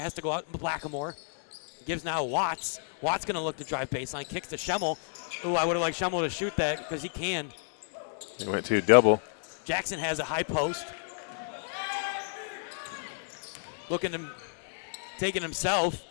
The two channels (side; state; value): right; silent; digital silence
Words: to go out. Blackamore gives now Watts. Watts going to look to drive baseline. Kicks to Schemmel. Ooh, I would have liked Schemmel to shoot that because he can. He went to double. Jackson has a high post. Looking to taking himself.